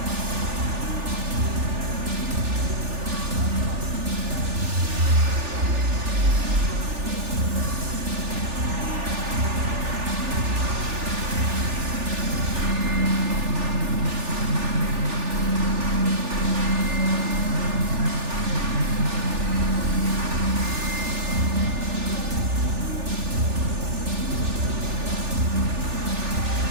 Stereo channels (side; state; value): left; late; 3.4 ms